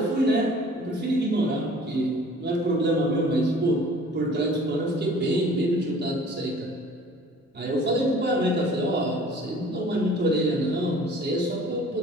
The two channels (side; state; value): both; normal; correlation 0.49